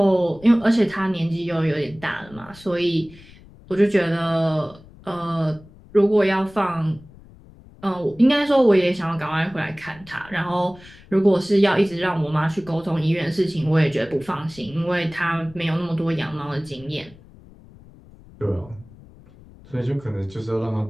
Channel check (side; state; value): left; noise; rumble, 23 dB below the sound